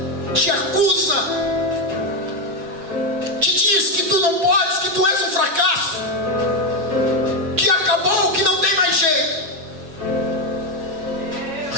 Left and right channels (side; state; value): left; late; 7.2 ms